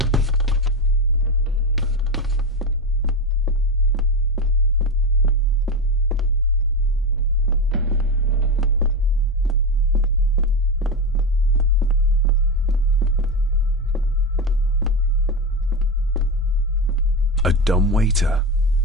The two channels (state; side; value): normal; both; correlation 0.16